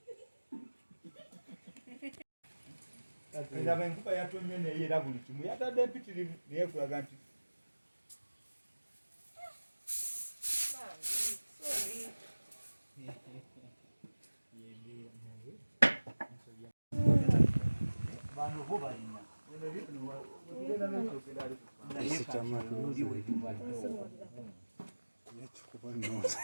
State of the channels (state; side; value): inverted; both; correlation -1.00